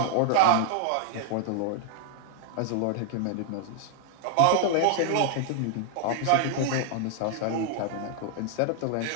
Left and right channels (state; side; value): different; both; correlation 0.00